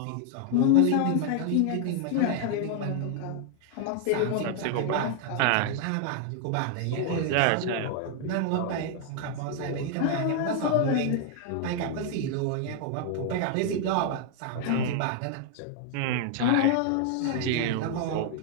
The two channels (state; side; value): different; both; correlation 0.00